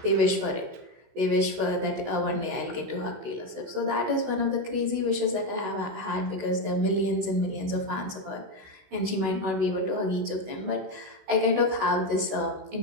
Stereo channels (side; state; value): left; late; 16 ms